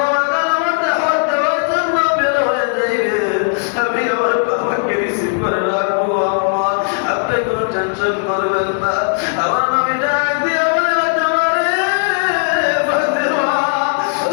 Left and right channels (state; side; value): silent; right; digital silence